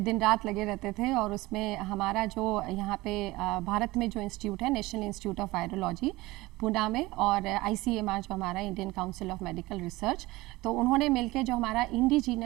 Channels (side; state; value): left; quieter; 20.2 dB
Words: दिन रात लगे रहते थे और उसमें हमारा जो यहाँ पे भारत में जो इंस्टीट्यूट है, national institute of virology Poona में, और ICMR जो हमारा Indian council of medical research, तो उन्होंने मिलकर जो हमारा